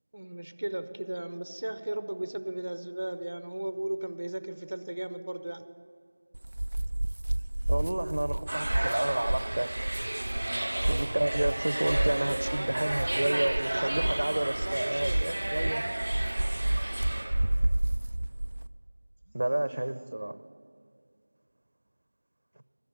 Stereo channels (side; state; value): both; inverted; correlation -1.00